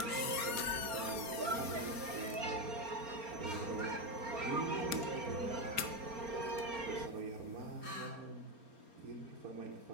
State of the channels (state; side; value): late; left; 4.3 ms